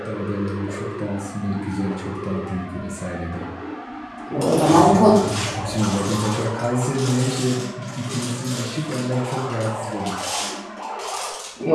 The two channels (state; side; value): identical; both; correlation 1.00